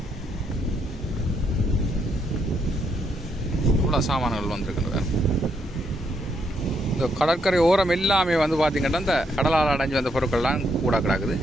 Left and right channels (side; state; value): both; normal; correlation 0.76